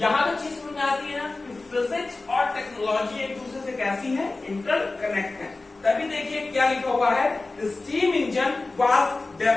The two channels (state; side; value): quieter; right; 3.3 dB